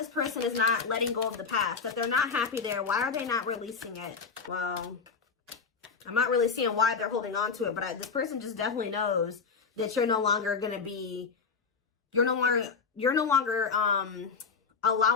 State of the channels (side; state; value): right; quieter; 5.3 dB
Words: person is not letting go of the past? That they're not happy there. Why are they not releasing it? Well, I'm not really seeing why they're holding on to it. But this person just definitely knows that you're no longer going to be... You're no longer